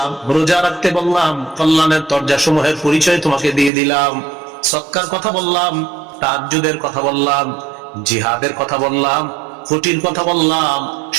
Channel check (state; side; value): drops out; left; at 3.7 s